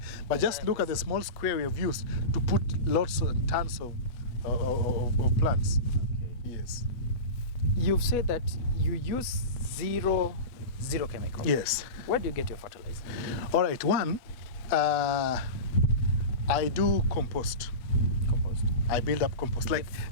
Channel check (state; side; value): late; right; 8.2 ms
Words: But just look at the small square we have used to put lots and tons of plants. Okay. Yes. You've said that you use zero chemical. Yes. Where do you get your fertilizer? All right. One, I do compost. Compost. I build up compost. Like